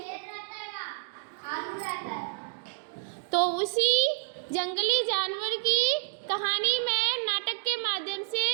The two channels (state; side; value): silent; left; digital silence